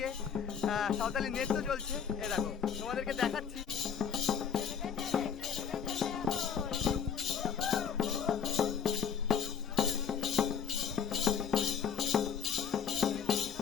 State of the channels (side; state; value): right; quieter; 7.4 dB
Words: সাঁওতালি নৃত্য চলছে। এ দেখো তোমাদেরকে দেখাচ্ছি।